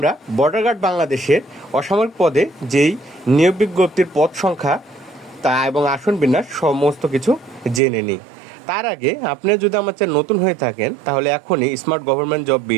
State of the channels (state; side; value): drops out; left; at 7.8 s